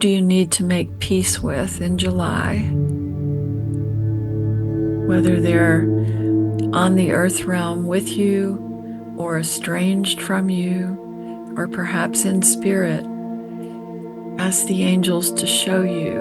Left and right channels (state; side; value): identical; both; correlation 1.00